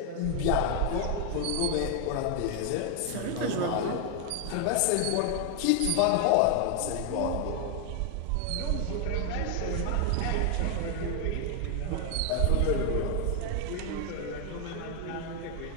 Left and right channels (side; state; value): both; different; correlation 0.00